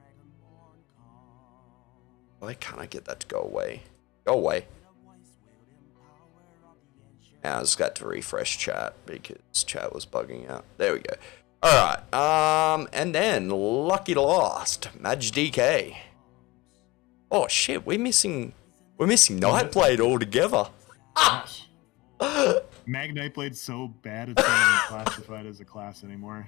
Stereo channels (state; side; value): quieter; right; 21.5 dB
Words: Why can't I get that to go away? Go away. Now I just got to refresh chat because chat was bugging out. There we go. Alright, and then Lucky Lost, Maj DK. Oh shit, we're missing Nightblade altogether. Gosh. Mag Nightblade's so bad it's not even classified as a class anymore.